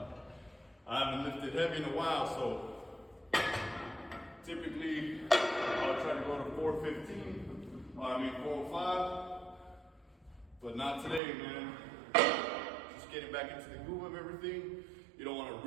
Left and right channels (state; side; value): drops out; left; at 11.2 s